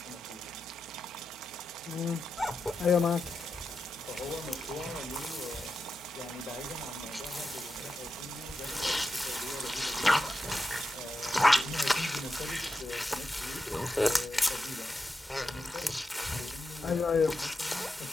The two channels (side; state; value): both; normal; correlation 0.89